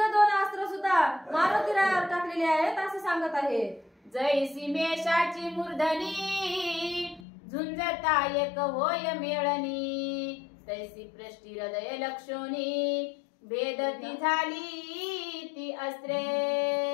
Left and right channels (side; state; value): right; drops out; at 7.2 s